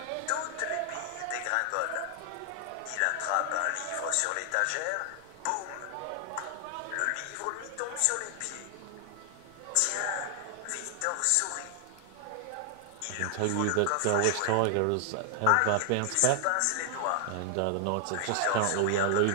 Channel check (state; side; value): different; both; correlation 0.00